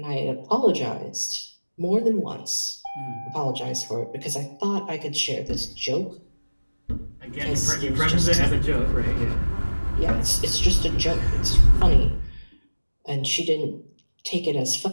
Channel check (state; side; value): inverted; both; correlation -1.00